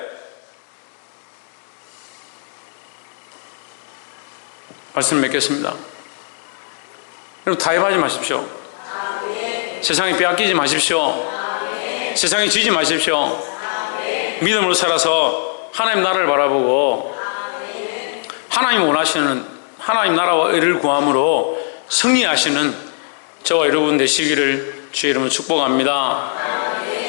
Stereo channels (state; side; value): silent; right; 66 dB below the other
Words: 말씀 맺겠습니다. 여러분 타협하지 마십시오. 세상에 빼앗기지 마십시오. 세상에 지지 마십시오. 믿음으로 살아서 하나님 나라를 바라보고 하나님 원하시는 하나님 나라와 의를 구함으로 승리하시는 저와 여러분 되시기를 주의 이름으로 축복합니다.